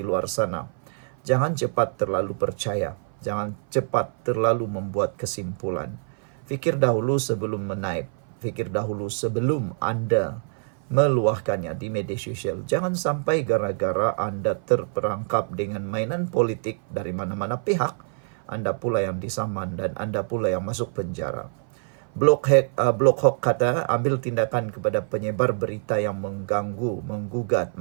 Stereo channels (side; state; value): left; silent; 57 dB below the other